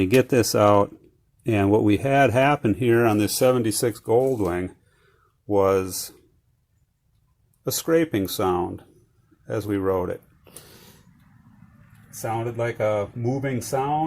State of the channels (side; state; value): both; identical; correlation 1.00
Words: get this out. And what we had happen here on this 76 Goldwing was a scraping sound as we rode it. It sounded like a moving